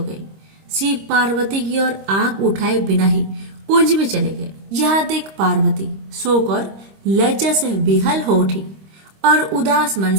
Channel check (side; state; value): left; late; 26 ms